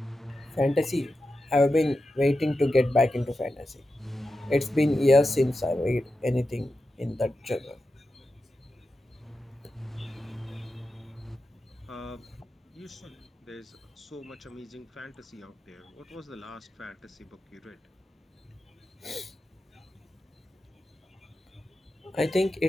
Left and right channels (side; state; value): both; normal; correlation 0.91